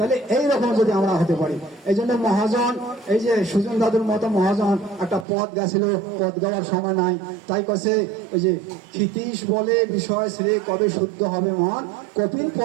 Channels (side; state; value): left; drops out; at 5.2 s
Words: এইরকম যদি আমরা হতে পারি, এই জন্য মহাজন, এই যে সুজন দাদুর মতো মহাজন একটা পদ গেছিল, পদ গাওয়ার সময় নাই, তাই কাছে ওই যে ক্ষিতীশ বলে বিষয় শ্রে কবে শুদ্ধ হবে মন, কপিল